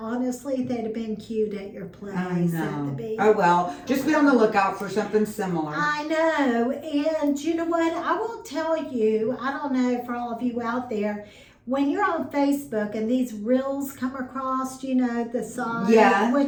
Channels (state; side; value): identical; both; correlation 1.00